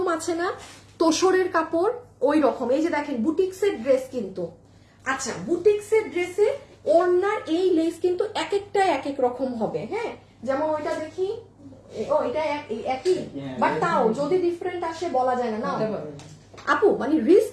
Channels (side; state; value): both; identical; correlation 1.00